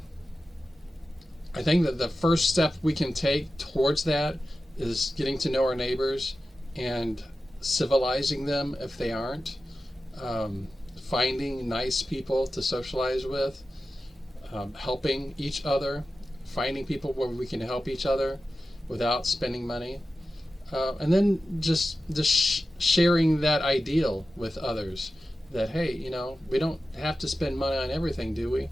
think that the first step we can take towards that is getting to know our neighbors and civilizing them if they aren't, finding nice people to socialize with, helping each other, finding people where we can help each other without spending money, and then just sharing that ideal with others that, hey, we don't have to spend money on everything, do we?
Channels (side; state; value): both; normal; correlation 0.93